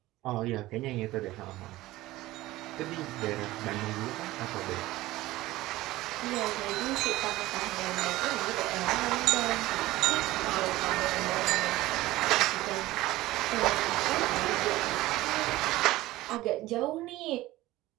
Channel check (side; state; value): left; quieter; 17.4 dB